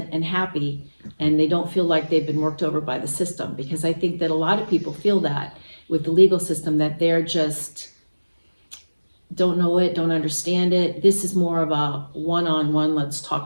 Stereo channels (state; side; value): inverted; both; correlation -1.00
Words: and happy, and they don't feel like they've been worked over by the system, because I think that a lot of people feel that with the legal system, that they're just don't know it, don't understand it. This is more of a one-on-one, let's talk